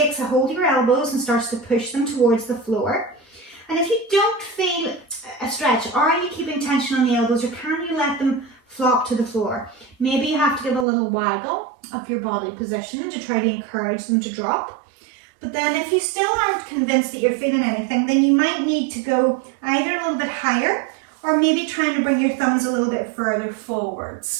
a hold of your elbows and starts to push them towards the floor. And if you don't feel a stretch, are you keeping tension on the elbows, or can you let them flop to the floor? Maybe you have to give a little waggle of your body position to try to encourage them to drop. But then if you still aren't convinced that you're feeling anything, then you might need to go either a little bit higher or maybe trying to bring your thumbs a little bit further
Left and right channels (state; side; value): drops out; left; at 10.9 s